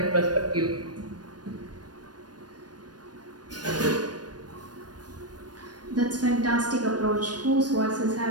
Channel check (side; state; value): left; late; 0.69 ms